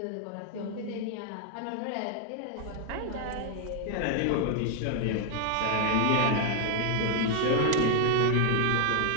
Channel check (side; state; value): both; different; correlation 0.00